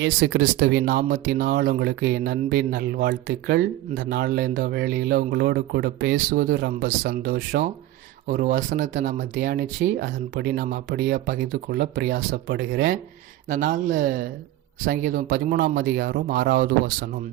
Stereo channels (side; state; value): left; quieter; 14.9 dB